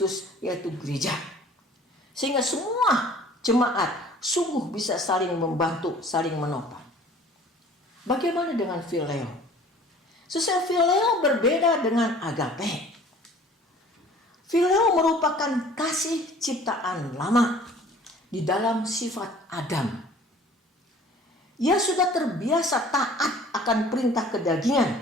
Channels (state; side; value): normal; both; correlation 0.49